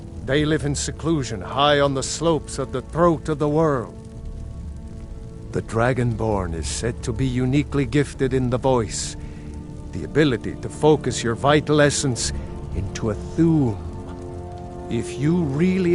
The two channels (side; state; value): both; identical; correlation 1.00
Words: They live in seclusion high on the slopes of the throat of the world. The Dragonborn is said to be uniquely gifted in the voice, the ability to focus your vital essence into a Thuum. If you